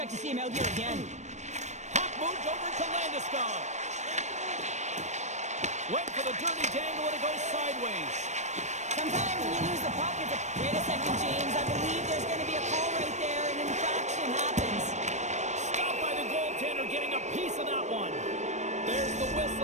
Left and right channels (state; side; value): late; left; 0.34 ms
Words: to see him out here again. Puck moved over to Landeskog. Went for the dirty dangle and it goes sideways. Sometimes when you lose the puck, it's a... Wait a second, James. I believe there's going to be a call right there. An infraction happens. Stopped by the goaltender, getting a piece of that one. There's the